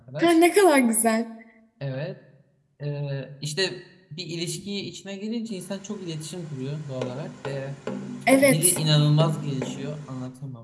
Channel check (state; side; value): identical; both; correlation 1.00